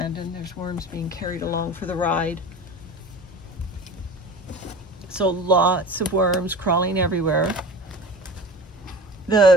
There's worms being carried along for the ride. So lots of worms crawling everywhere.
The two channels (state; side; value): normal; both; correlation 0.36